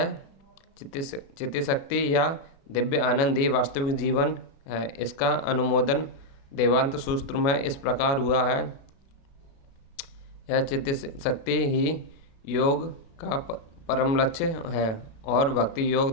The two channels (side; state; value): right; late; 36 ms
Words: चित्तशक्ति या दिव्य आनंद ही वास्तविक जीवन है। इसका अनुमोदन देवांत सूत्र में इस प्रकार हुआ है, यह चित्तशक्ति ही योग का परम लक्ष्य है और भक्ति योग